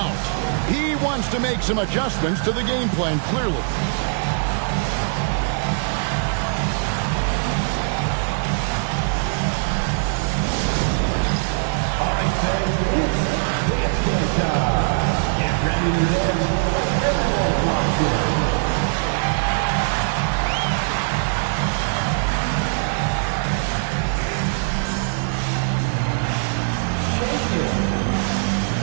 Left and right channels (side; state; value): left; silent; digital silence